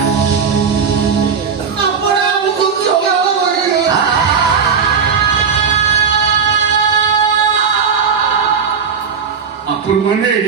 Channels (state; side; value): quieter; left; 6.3 dB